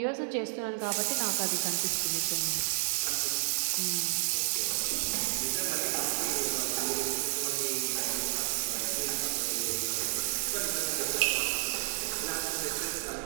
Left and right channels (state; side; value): silent; left; 57 dB below the other